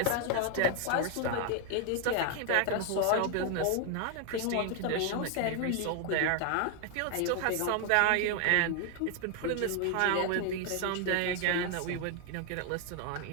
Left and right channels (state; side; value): different; both; correlation 0.00